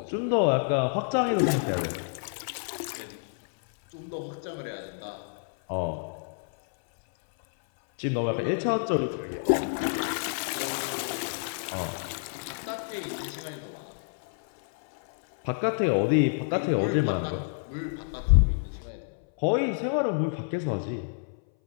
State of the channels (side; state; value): right; silent; 59 dB below the other